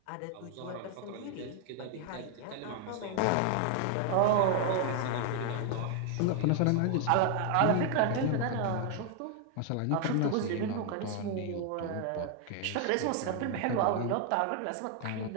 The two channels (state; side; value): different; both; correlation 0.00